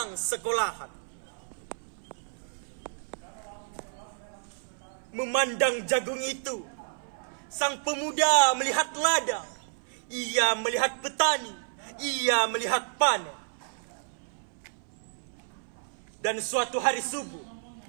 sekolahan memandang jagung itu. Sang pemuda melihat ladang, ia melihat petani, ia melihat panen. Dan suatu hari subuh,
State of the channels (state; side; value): silent; left; 58 dB below the other